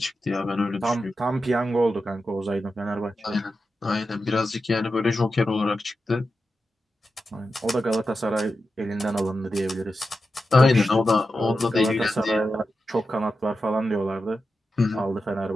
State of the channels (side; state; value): both; normal; correlation 0.90